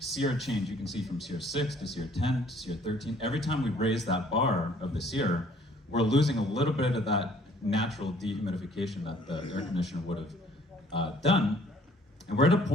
change you can see from SEER 6 to SEER 10 to SEER 13, every time we raise that bar of the SEER, we're losing a little bit of that natural dehumidification that the air conditioner would have done. And we're at a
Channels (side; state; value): both; normal; correlation 0.58